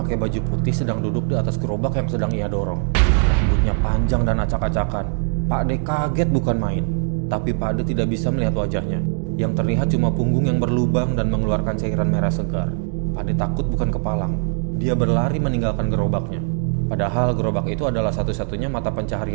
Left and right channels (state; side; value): silent; left; 65 dB below the other